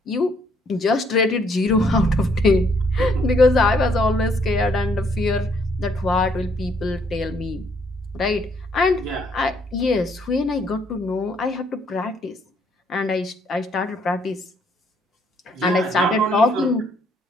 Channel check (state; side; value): normal; both; correlation 0.68